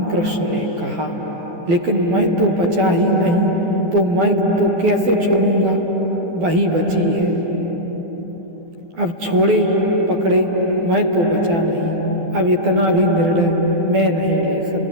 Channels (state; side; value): late; left; 12 ms